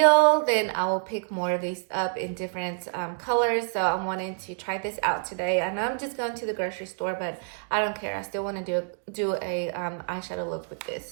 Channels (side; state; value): left; silent; digital silence